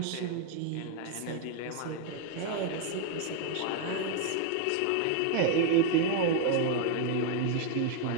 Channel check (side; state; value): both; different; correlation 0.00